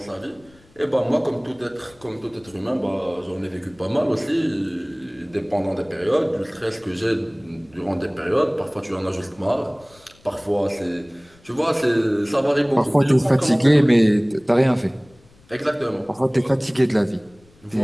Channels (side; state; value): left; noise; rumble, 29 dB below the sound